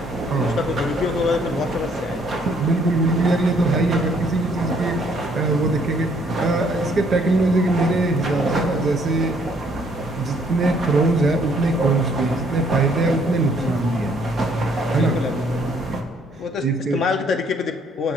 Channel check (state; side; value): normal; both; correlation 0.65